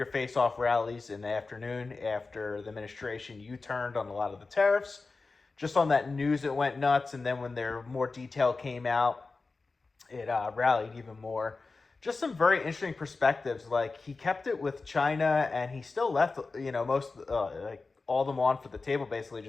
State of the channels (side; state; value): right; quieter; 3.9 dB